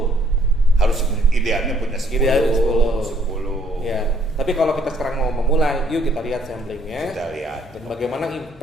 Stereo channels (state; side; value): normal; both; correlation 0.65